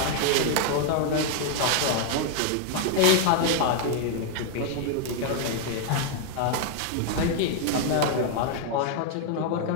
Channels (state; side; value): different; both; correlation 0.00